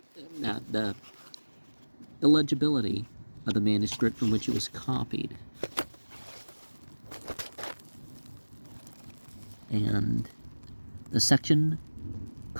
illegibility of the manuscript from which it was copied. And the section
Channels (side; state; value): both; inverted; correlation -1.00